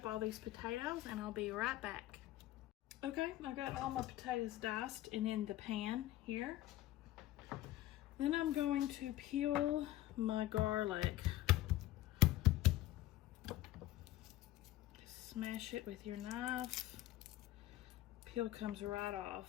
all these potatoes and I'll be right back. Okay, I got all my potatoes diced and in the pan here. Then I'm going to peel my garlic. Smash it with your knife. Peel comes right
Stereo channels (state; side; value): quieter; right; 15.3 dB